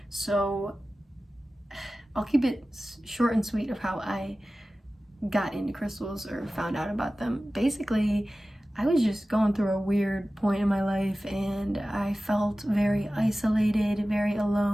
So I'll keep it short and sweet of how I got into crystals or found out about them. Basically, I was just going through a weird point in my life and I felt very isolated, very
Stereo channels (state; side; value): normal; both; correlation 0.96